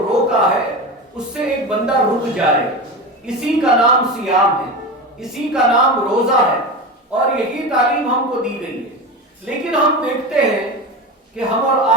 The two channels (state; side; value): normal; both; correlation 0.24